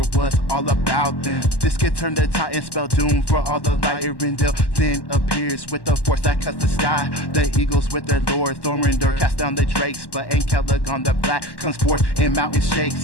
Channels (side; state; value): right; late; 1.1 ms